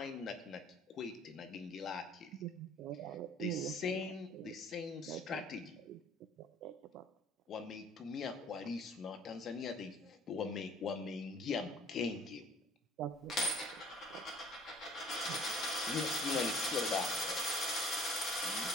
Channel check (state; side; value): normal; both; correlation 0.53